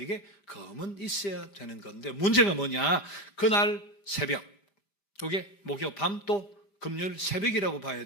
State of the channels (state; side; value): late; right; 5.0 ms